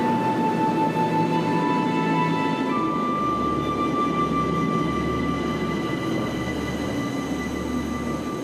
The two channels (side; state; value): both; identical; correlation 1.00